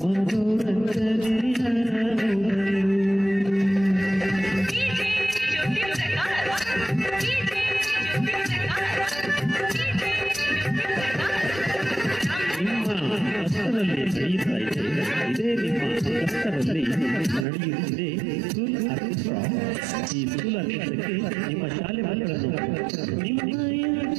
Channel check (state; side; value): drops out; left; at 17.4 s